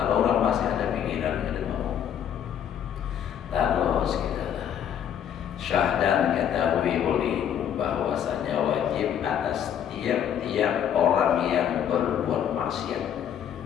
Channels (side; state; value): right; quieter; 9.3 dB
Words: orang masih ada pikiran ada mau. Terus kita syahdan ketahui olehmu bahwasanya wajib atas tiap-tiap orang yang berbuat maksiat.